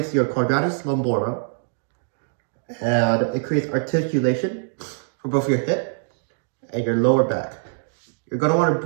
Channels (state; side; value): silent; left; digital silence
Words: your quadratus lumborum and it creates articulation for both your hip and your lower back. You're gonna wanna